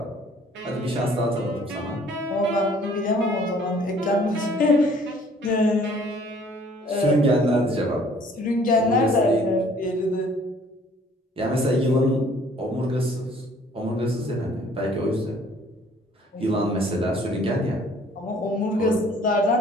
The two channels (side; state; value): both; normal; correlation 0.57